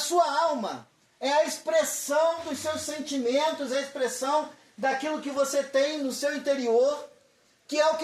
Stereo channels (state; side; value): identical; both; correlation 1.00